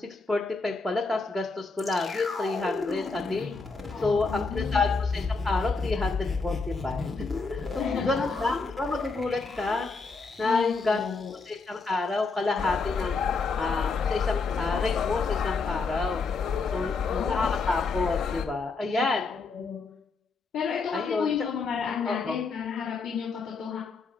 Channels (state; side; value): quieter; right; 4.2 dB